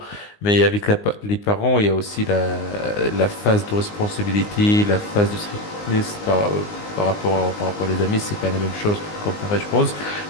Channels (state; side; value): late; right; 19 ms